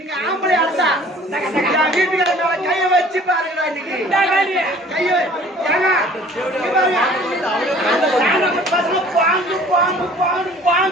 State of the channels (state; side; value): normal; both; correlation 0.51